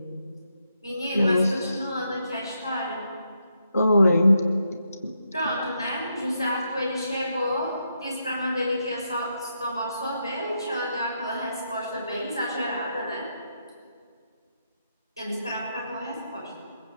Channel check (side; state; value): both; inverted; correlation -0.81